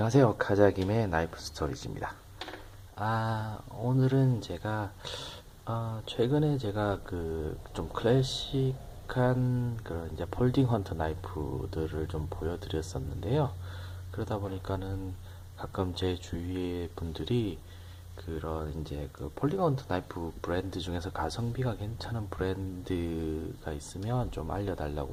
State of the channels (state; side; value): identical; both; correlation 1.00